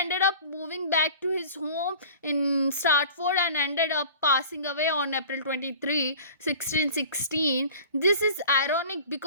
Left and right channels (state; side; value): inverted; both; correlation -0.42